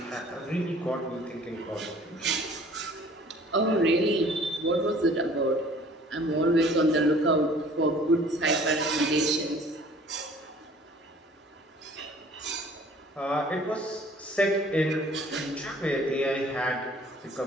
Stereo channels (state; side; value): normal; both; correlation 0.52